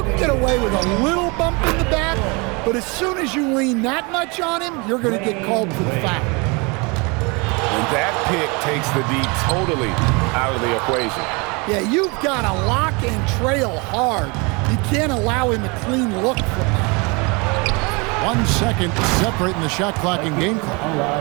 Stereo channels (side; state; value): left; quieter; 29.0 dB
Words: can get away with a little bump in the back, but as soon as you lean that much on him, you're going to get called for the foul. And that pick takes the D totally out of the equation. Yeah, you've got to lock and trail hard. You can't allow him a clean look from that. 1 second separating the shot clock and game